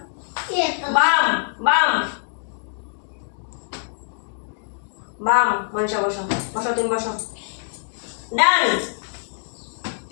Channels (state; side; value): silent; right; digital silence